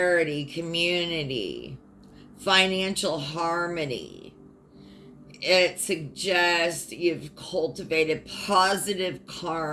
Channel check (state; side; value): identical; both; correlation 1.00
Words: community, financial harmony. It suggests you've cultivated positive